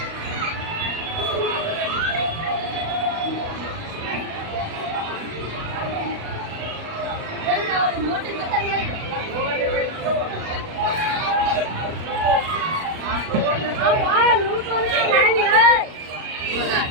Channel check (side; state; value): left; late; 37 ms